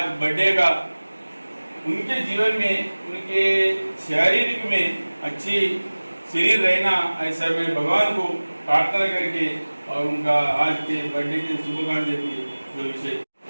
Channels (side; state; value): both; inverted; correlation -1.00